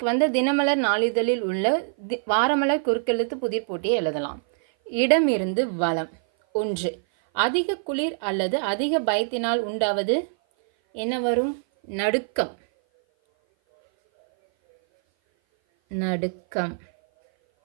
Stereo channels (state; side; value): silent; left; 57 dB below the other